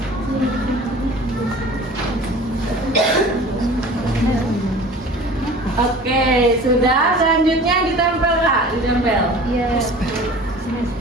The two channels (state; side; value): normal; both; correlation 0.42